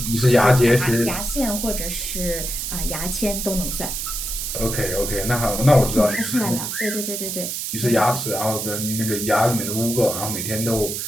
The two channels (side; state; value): right; noise; hiss, 4 dB below the sound